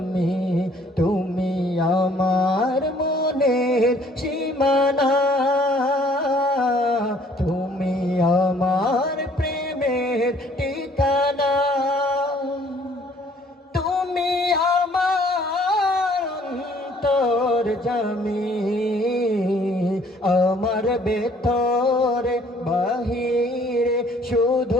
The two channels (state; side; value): normal; both; correlation 0.59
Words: তুমি আমার মনের সীমানা, তুমি আমার প্রেমের ঠিকানা, তুমি আমার অন্তর্যামী। আমার ভেতরে বাহিরে